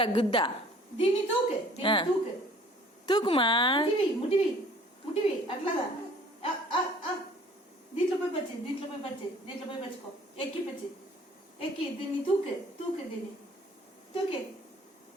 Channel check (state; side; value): normal; both; correlation 0.53